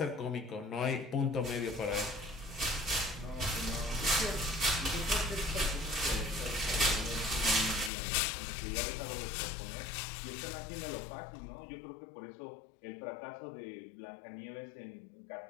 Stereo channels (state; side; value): drops out; right; at 7.9 s